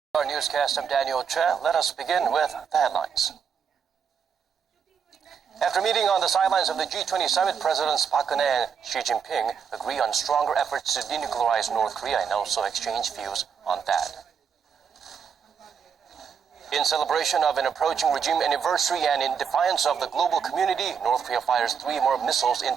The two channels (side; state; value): left; quieter; 7.0 dB